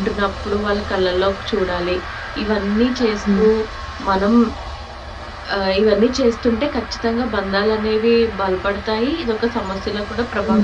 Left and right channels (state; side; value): identical; both; correlation 1.00